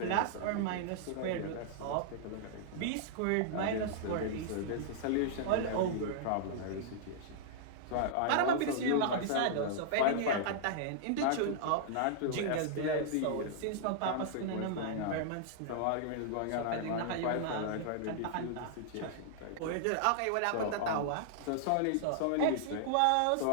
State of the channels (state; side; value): different; both; correlation -0.01